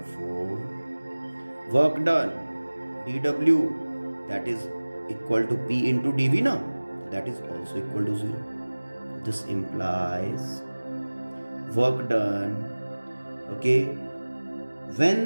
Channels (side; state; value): both; inverted; correlation -1.00